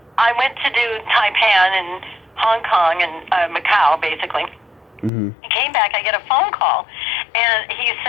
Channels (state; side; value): drops out; right; at 5.1 s